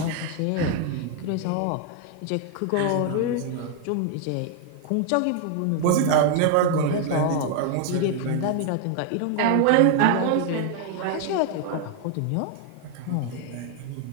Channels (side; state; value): both; different; correlation 0.00